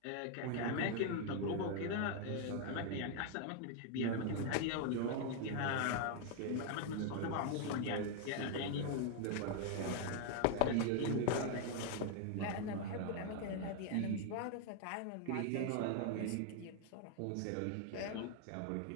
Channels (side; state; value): both; different; correlation 0.00